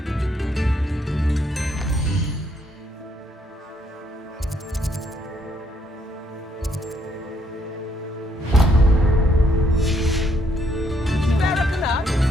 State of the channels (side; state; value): both; normal; correlation 0.71